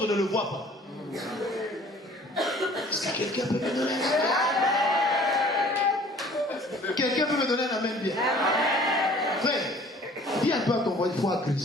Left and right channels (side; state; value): both; normal; correlation 0.51